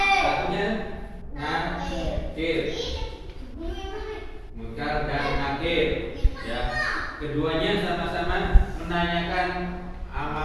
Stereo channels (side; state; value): both; identical; correlation 1.00